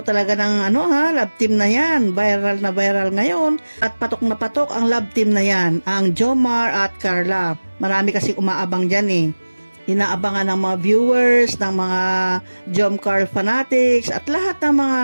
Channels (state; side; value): inverted; both; correlation -1.00